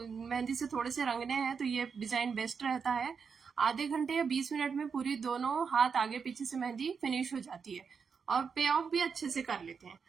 मेहंदी से थोड़े से रंगने हैं तो ये डिजाइन बेस्ट रहता है। आधे घंटे या 20 मिनट में पूरी दोनों हाथ आगे पीछे से मेहंदी फिनिश हो जाती है और पे ऑफ भी अच्छे से कर लेते हैं।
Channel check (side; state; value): left; quieter; 6.0 dB